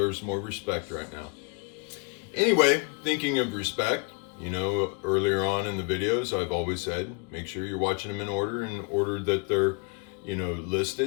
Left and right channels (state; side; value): quieter; right; 34.1 dB